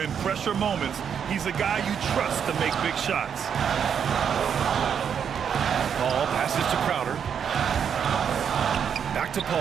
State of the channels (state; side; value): quieter; left; 7.7 dB